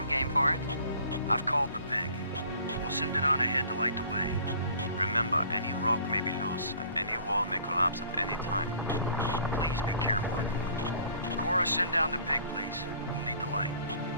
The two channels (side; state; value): both; inverted; correlation -0.52